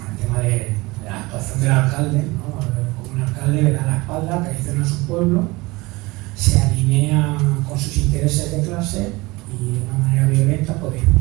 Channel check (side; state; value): left; quieter; 22.6 dB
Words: la actuación del alcalde, ¿no? Como un alcalde le da la espalda, traiciona a su pueblo, se alinea con sus intereses de clase y de una manera violenta puede